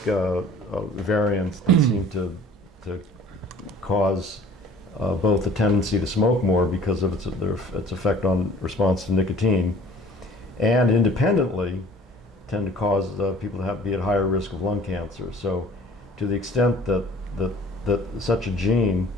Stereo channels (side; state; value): both; normal; correlation 0.49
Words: variants that seem to cause both a tendency to smoke more because of its effect on response to nicotine, and independently tend to cause people to be at higher risk of lung cancer. So to the extent that such a gene